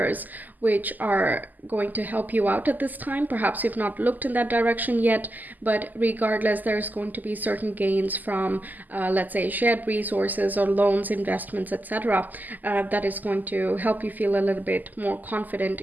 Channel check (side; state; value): left; late; 0.084 ms